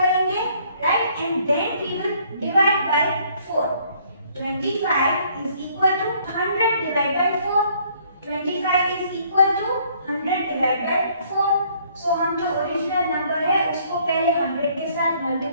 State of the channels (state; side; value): inverted; both; correlation -0.63